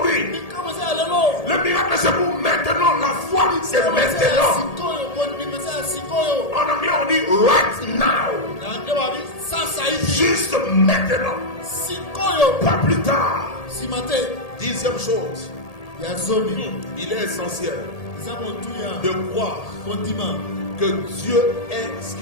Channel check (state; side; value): late; right; 1.8 ms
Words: Le miracle c'est pour maintenant. La foi c'est maintenant. En anglais on dit right now. Juste maintenant. Pas plus tard. 10e chose. Il est essentiel de croire que Dieu est ce